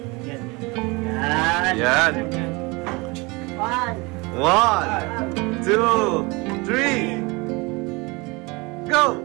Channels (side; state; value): left; quieter; 25.9 dB